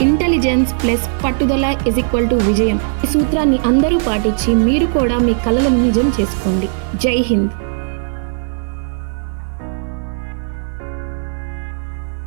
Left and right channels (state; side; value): silent; left; 56 dB below the other